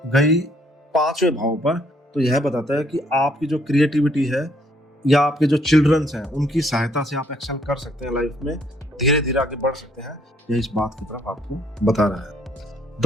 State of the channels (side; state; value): both; normal; correlation 0.67